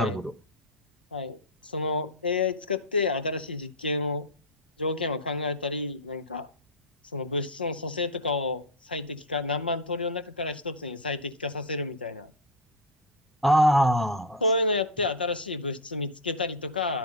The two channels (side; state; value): both; normal; correlation 0.05